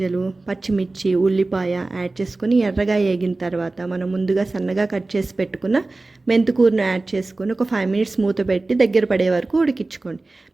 పచ్చిమిర్చి, ఉల్లిపాయ యాడ్ చేసుకొని ఎర్రగా వేగిన తర్వాత మనం ముందుగా సన్నగా కట్ చేసి పెట్టుకున్న మెంతికూరను యాడ్ చేసుకొని ఒక 5 మినిట్స్ మూత పెట్టి దగ్గర పడే వరకు ఉడికించుకోండి.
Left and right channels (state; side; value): quieter; left; 3.2 dB